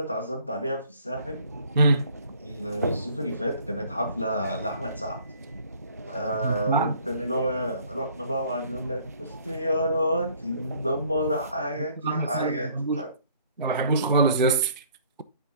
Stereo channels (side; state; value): both; inverted; correlation -0.58